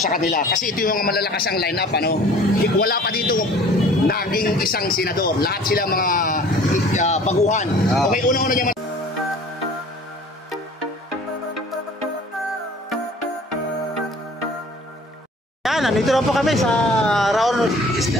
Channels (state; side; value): normal; both; correlation 0.48